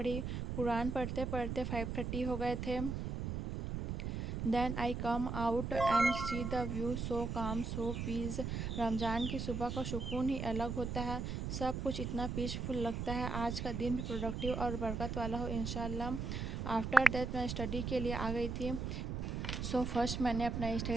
कुरान पढ़ते पढ़ते 5:30 हो गए थे। Then I come out and see the view, so calm so piece. Ramzan की सुबह का सुकून ही अलग होता है, सब कुछ इतना पीसफुल लगता है। आज का दिन भी प्रोडक्टिव और बरकत वाला हो इंशाल्लाह। आफ्टर दैट मैं स्टडी के लिए आ गई थी। फर्स्ट मैंने अपना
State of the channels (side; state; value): right; noise; rumble, 3 dB below the sound